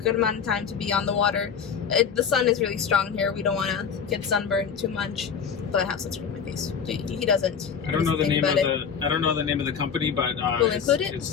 amount of time to be on the water. The sun is really strong here. We don't want to get sunburned too much. But I have sunscreen on my face. He doesn't. I don't know the name of the company, but we'll include it. It's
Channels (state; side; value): quieter; right; 7.0 dB